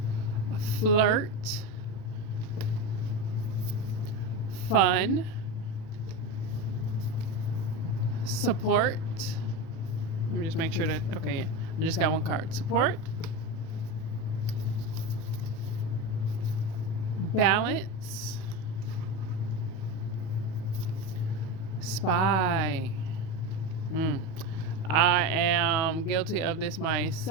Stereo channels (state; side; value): late; right; 37 ms